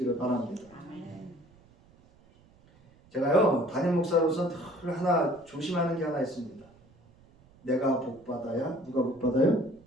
바랍니다. 제가요 담임 목사로서 늘 하나 조심하는 게 하나 있습니다. 내가 복 받아야 누가 복 받아요?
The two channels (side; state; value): right; noise; rumble, 28 dB below the sound